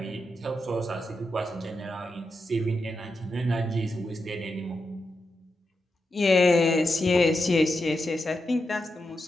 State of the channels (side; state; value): both; normal; correlation 0.87